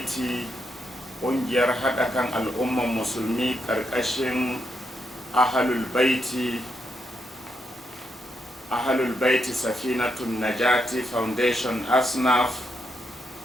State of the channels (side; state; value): both; normal; correlation 0.80